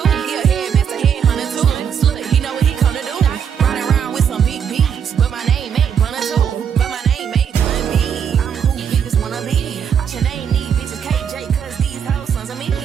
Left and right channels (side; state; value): left; quieter; 7.8 dB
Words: He a headmaster, headhunter too. Look, he know what he come to do. Riding around with some big beats, but my name ain't Bunna too. But my name ain't Bun B. I'm who bitches wanna be. Your name need bitches KJ, cause these hoes sons of me. He